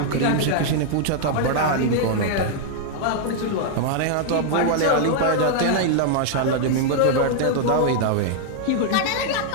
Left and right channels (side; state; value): both; different; correlation -0.01